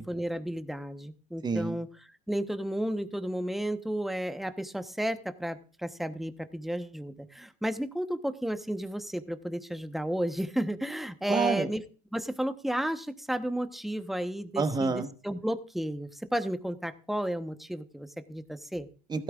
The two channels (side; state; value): both; normal; correlation 0.91